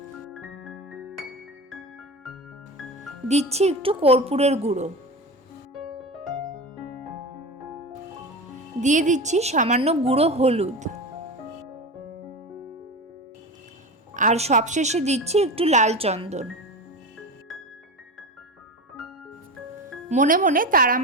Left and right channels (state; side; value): normal; both; correlation 0.26